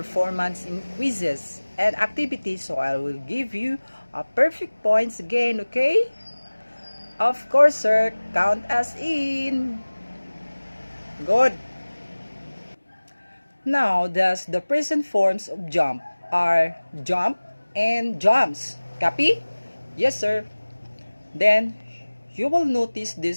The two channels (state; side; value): inverted; both; correlation -1.00